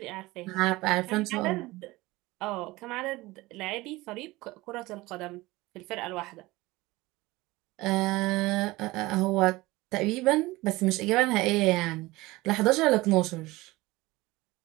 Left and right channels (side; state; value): left; quieter; 20.2 dB